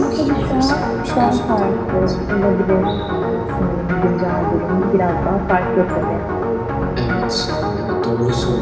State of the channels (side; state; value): both; identical; correlation 1.00